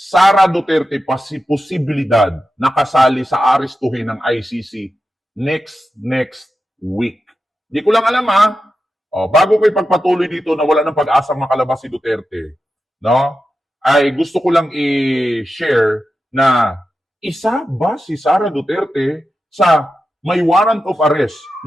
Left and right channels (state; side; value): normal; both; correlation 0.91